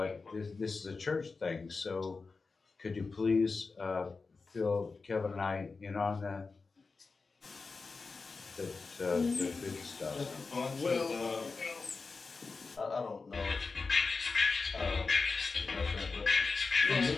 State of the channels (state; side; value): quieter; right; 4.3 dB